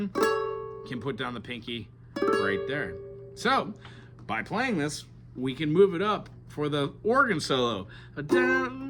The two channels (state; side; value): identical; both; correlation 1.00